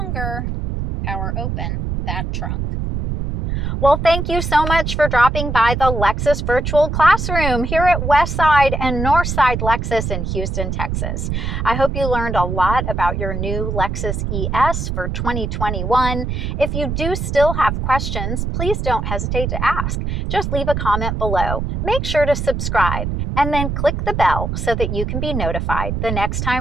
power open that trunk. Well, thank you so much for dropping by the Lexus Virtual Classroom here at Westside and Northside Lexus in Houston, Texas. I hope you learned a lot about your new Lexus ES for 2021. If you do still have questions, please don't hesitate to ask. Just leave a comment below. Make sure to subscribe and then click the bell so that you can be notified the next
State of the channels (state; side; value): noise; right; rumble, 2 dB below the sound